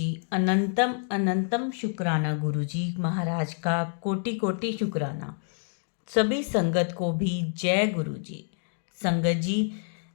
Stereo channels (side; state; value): right; silent; 60 dB below the other